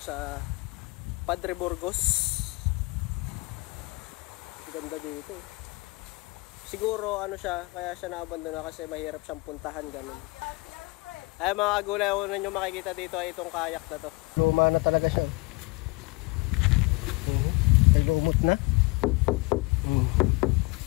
sa Padre Burgos. Ganda dito. Siguro siya, kaya siya naabandona kasi mahirap siyang puntahan ganun. Ayun mga kagulay, una nyo makikita dito ay itong kayak na to. Luma na talaga siya. May lumot na.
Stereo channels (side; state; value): right; quieter; 25.7 dB